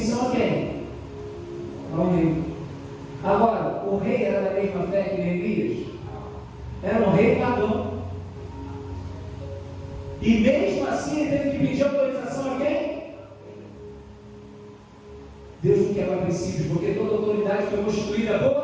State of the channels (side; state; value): both; identical; correlation 1.00